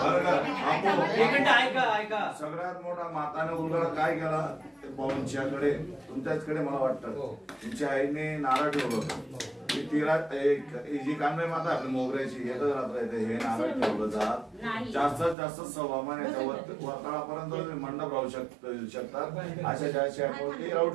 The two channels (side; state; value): left; drops out; at 15.4 s